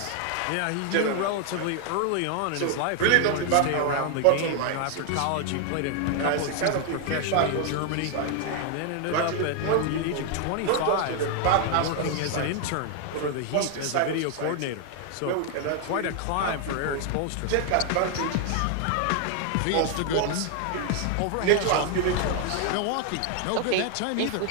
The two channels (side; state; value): both; different; correlation 0.00